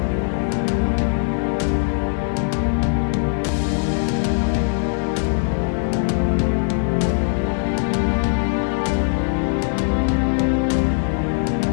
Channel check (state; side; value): silent; right; 65 dB below the other